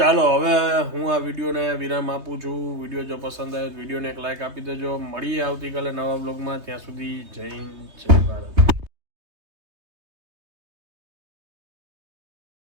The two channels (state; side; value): late; left; 3.2 ms